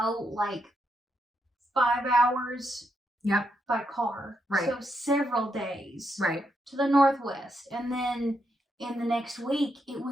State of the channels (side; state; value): both; normal; correlation 0.81